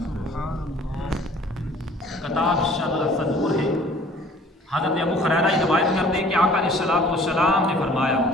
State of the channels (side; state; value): both; normal; correlation 0.52